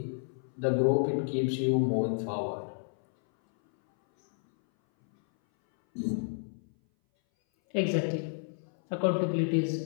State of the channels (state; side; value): silent; right; 58 dB below the other